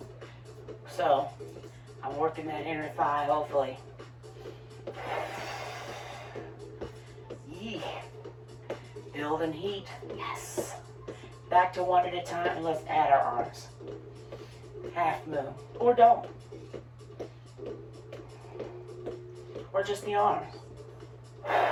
So, I'm working that inner thigh, hopefully. Yee. Building heat. Yes. Back to one at a time, and let's add our arms. Half moon, or don't. Or just the arms.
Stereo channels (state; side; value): identical; both; correlation 1.00